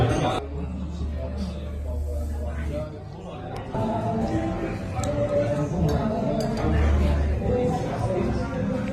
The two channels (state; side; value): identical; both; correlation 1.00